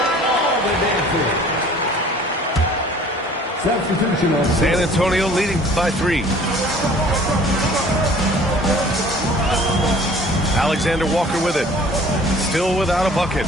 San Antonio leading by 3. Alexander Walker with it. Still without a bucket.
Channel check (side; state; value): both; normal; correlation 0.51